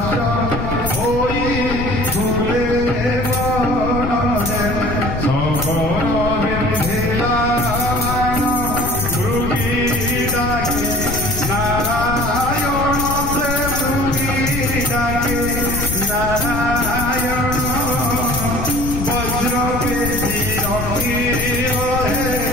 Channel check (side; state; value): left; noise; rumble, 4 dB below the sound